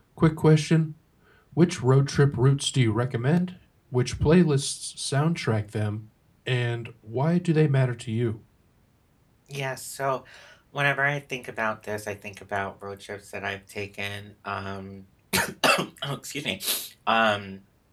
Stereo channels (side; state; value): both; identical; correlation 1.00